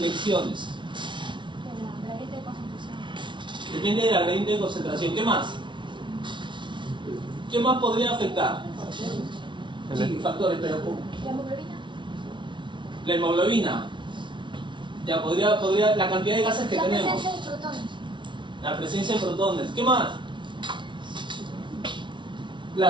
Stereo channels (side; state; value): left; late; 0.24 ms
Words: Depende del gradiente de concentración. ¿Qué más? ¿Qué más podría afectar? Sí, factores, pero ¿cómo? La hemoglobina. Ya podría, la cantidad de gases que tenemos. La presencia de protones. La presencia de protones. ¿Qué más?